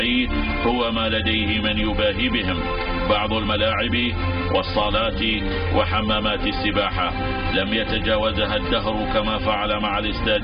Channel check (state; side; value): identical; both; correlation 1.00